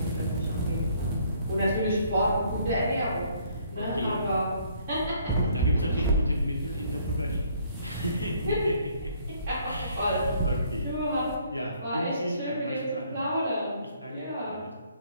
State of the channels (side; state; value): both; inverted; correlation -0.63